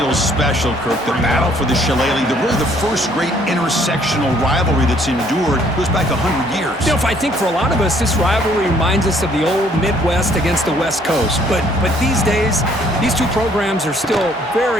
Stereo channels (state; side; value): normal; both; correlation 0.62